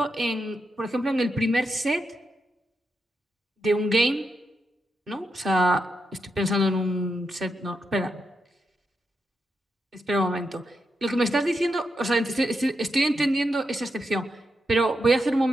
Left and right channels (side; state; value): both; normal; correlation 0.84